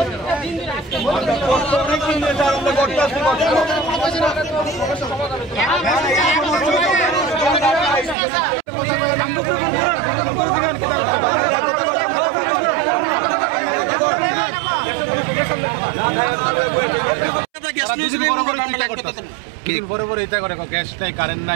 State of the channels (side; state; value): left; drops out; at 8.2 s